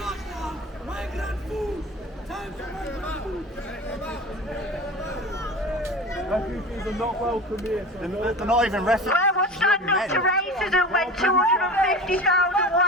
Migrant food! Time for migrant food! Refugees are not welcome here. They're not even refugees. Where was standing up to racism when 250,000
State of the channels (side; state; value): both; normal; correlation 0.34